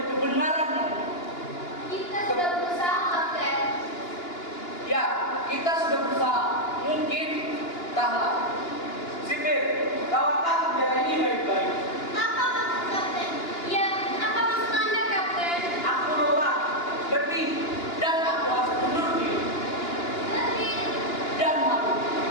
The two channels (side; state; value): right; late; 2.9 ms